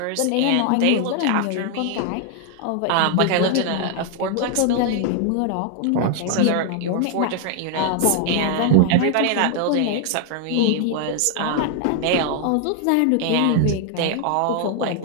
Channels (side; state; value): both; different; correlation 0.00